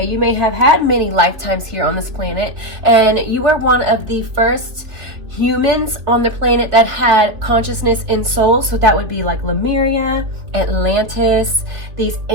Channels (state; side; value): late; left; 3.2 ms